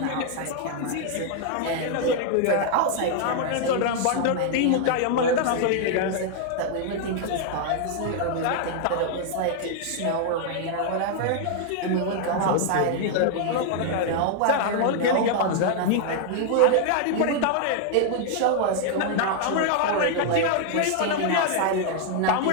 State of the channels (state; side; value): different; both; correlation 0.00